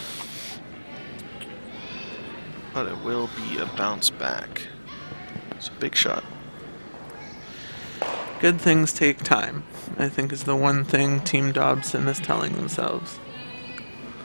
But it will be a bounce back. It's a big shot. Good things take time, I think, is the one thing Team Dobson is telling themselves.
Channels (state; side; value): inverted; both; correlation -1.00